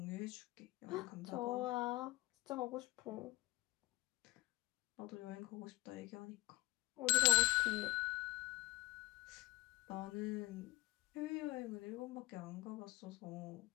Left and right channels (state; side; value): quieter; right; 22.0 dB